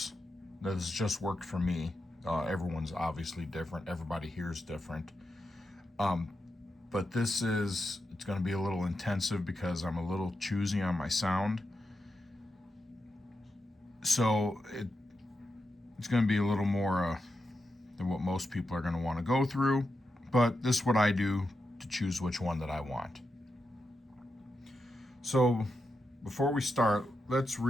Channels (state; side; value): normal; both; correlation 0.87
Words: That has just worked for me. Everyone's obviously different. Everybody hears different. But it's going to be a little intensive because I'm a little choosy on my sound. So it's going to be a little more than what most people are going to want to go through. But this is what I do to choose which one that I want. So before we start, let's